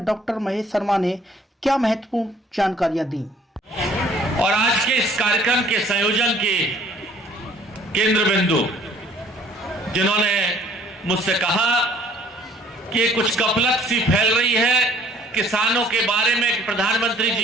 डॉक्टर महेश शर्मा ने क्या महत्वपूर्ण जानकारियां दी। और आज के इस कार्यक्रम के संयोजन के केंद्र बिंदु जिन्होंने मुझसे कहा कि कुछ कपलत सी फैल रही है किसानों के बारे में, प्रधानमंत्री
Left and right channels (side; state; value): both; normal; correlation 0.57